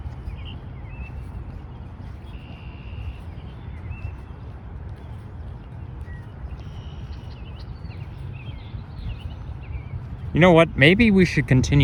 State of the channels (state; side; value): identical; both; correlation 1.00